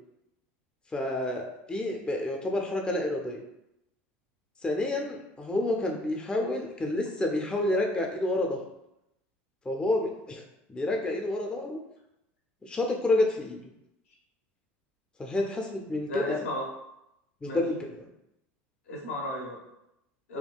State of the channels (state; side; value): normal; both; correlation 0.63